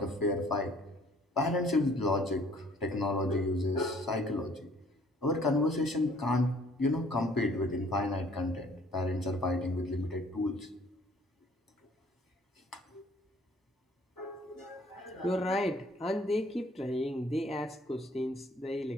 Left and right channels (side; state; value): both; normal; correlation 0.57